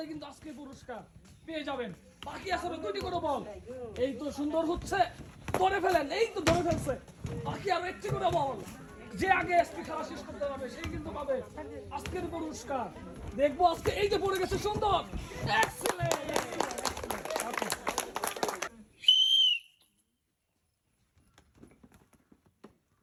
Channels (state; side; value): identical; both; correlation 1.00